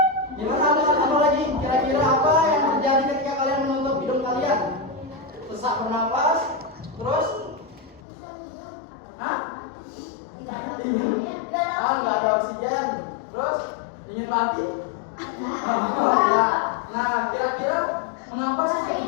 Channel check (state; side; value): drops out; right; at 8.0 s